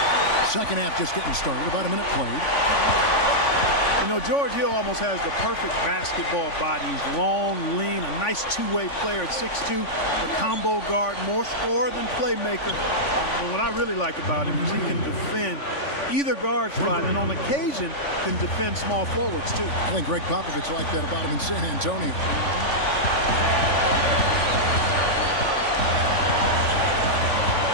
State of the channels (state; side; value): late; right; 3.5 ms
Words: Second half just getting started. About a minute played. You know, George Hill almost has the perfect basketball body. He's long, lean, a nice two-way player at 6'2", a combo guard, more scorer than playmaker. But what I really like about him is he can defend either guard spot, and on occasion can defend small forwards too. I think Greg Popovich liked that about him in San Antonio.